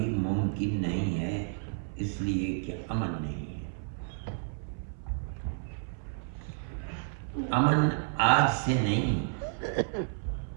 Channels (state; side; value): silent; left; 57 dB below the other